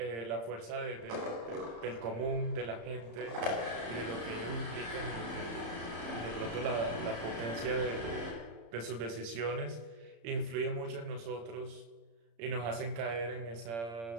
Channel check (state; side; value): late; left; 35 ms